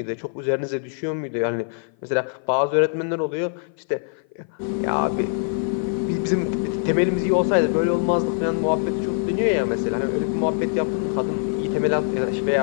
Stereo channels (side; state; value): right; silent; 56 dB below the other